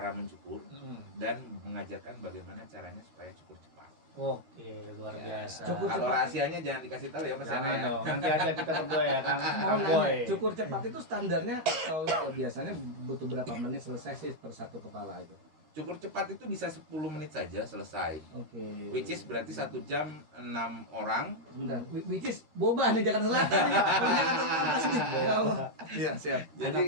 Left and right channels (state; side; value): late; left; 13 ms